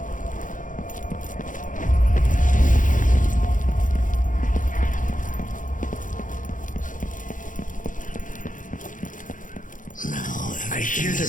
I hear their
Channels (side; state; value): right; late; 0.38 ms